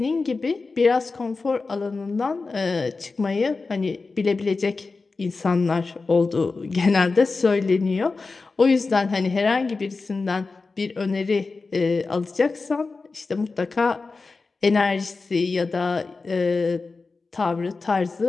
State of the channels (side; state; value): right; quieter; 4.0 dB